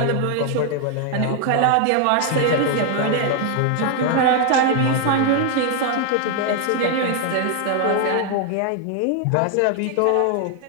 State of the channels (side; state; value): both; different; correlation 0.00